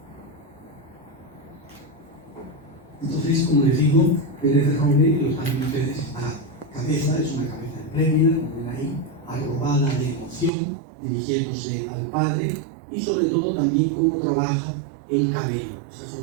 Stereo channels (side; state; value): left; drops out; at 10.5 s